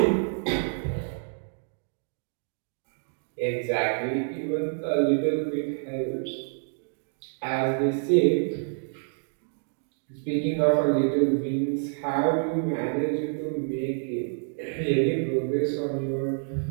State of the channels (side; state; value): left; silent; digital silence